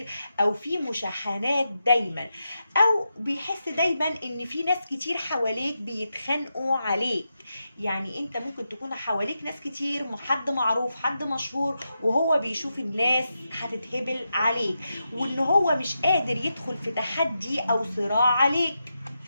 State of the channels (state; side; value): inverted; both; correlation -0.87